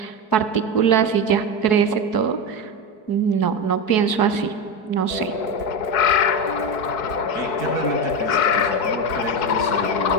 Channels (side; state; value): right; late; 4.7 ms